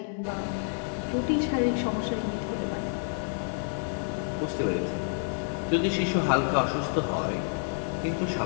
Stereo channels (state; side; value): silent; right; 59 dB below the other